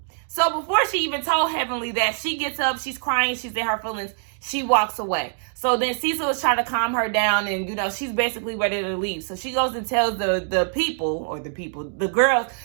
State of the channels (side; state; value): left; silent; digital silence